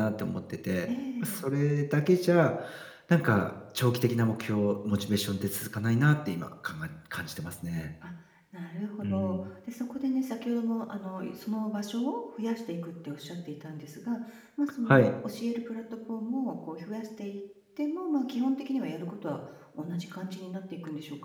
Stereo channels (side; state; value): both; identical; correlation 1.00